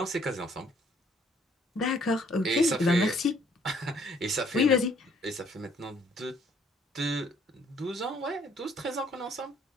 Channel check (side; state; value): both; normal; correlation 0.63